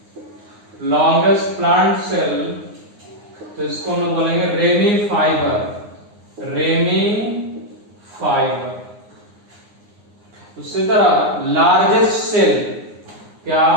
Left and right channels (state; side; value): late; left; 9.7 ms